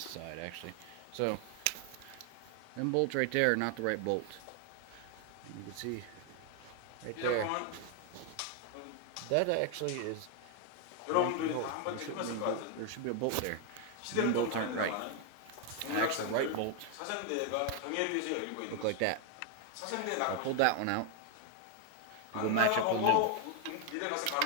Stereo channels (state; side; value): different; both; correlation 0.01